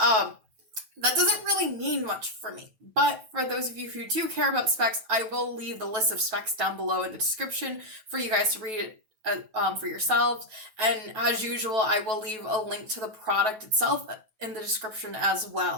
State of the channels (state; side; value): late; left; 9.2 ms